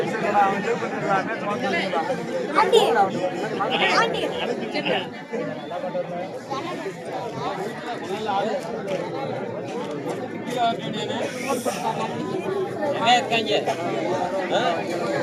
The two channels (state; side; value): identical; both; correlation 1.00